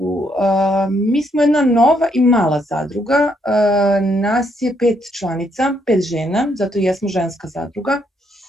Mi smo jedna nova i mala zadruga. Nas je 5 članica, 5 žena, zato i jesmo ženska zadruga.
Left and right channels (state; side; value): normal; both; correlation 0.73